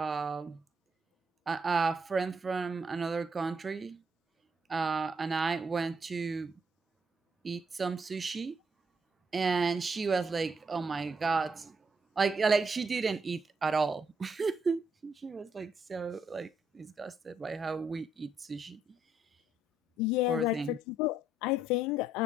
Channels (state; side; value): normal; both; correlation 0.74